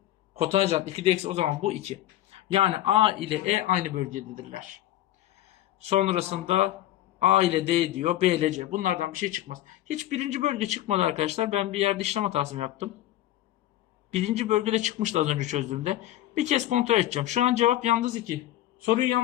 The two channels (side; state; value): right; quieter; 14.0 dB